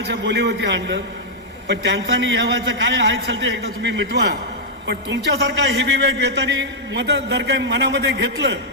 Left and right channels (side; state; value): both; normal; correlation -0.06